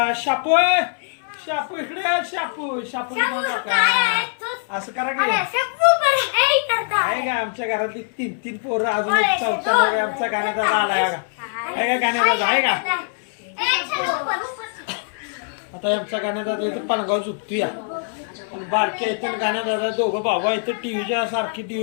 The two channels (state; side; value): silent; right; 60 dB below the other